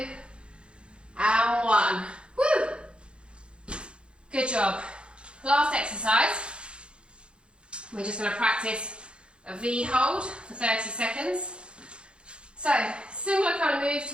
and 1. Woo! Good job. Last exercise. We're just going to practice a V hold for 30 seconds. So, similar kind of move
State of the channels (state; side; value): late; left; 0.056 ms